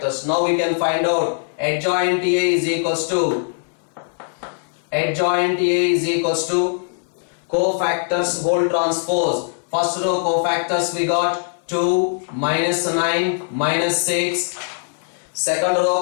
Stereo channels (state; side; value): silent; right; digital silence